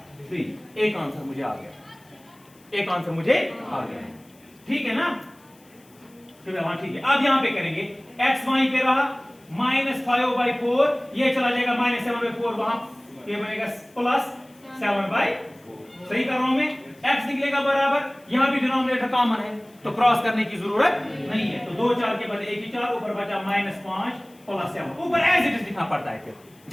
3। एक आंसर मुझे आ गया, एक आंसर मुझे आ गया, ठीक है ना, हाँ ठीक है। अब यहां पे करेंगे x वहीं पे रहा -5/4, ये चला जाएगा -7/4 वहां, ये बनेगा +7/4, सही कर रहा हूं मैं, x निकलेगा बराबर, यहां भी डिनोमिनेटर कॉमन है तो क्रॉस करने की जरूरत नहीं है, तो 2 4 के बदले 1 ही 4, ऊपर बचा -5 + 7, ऊपर एज इट इज लिखना पड़ता है, फिर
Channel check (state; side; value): noise; left; hiss, 29 dB below the sound